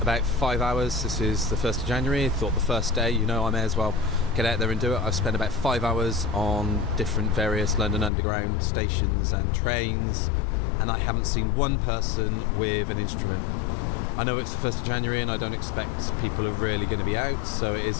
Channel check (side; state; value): right; drops out; at 8.1 s